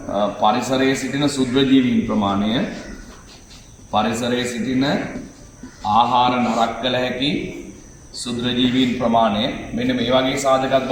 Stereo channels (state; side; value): identical; both; correlation 1.00